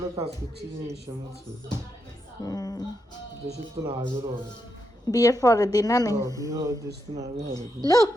কাজ করছি জিনিস আছে। দেশের তো না আজও হবে। বিয়ের পরের দিন না নেই। বিয়ে দেশ তো না হবে। Look,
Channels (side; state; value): both; normal; correlation 0.83